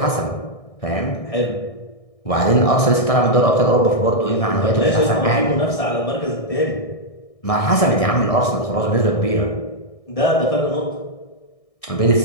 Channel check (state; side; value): late; right; 1.6 ms